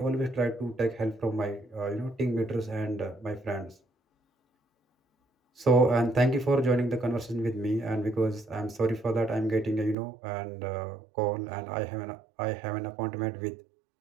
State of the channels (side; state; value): left; drops out; at 10.0 s